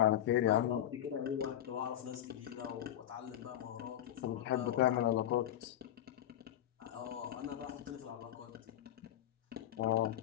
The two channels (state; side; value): quieter; right; 11.6 dB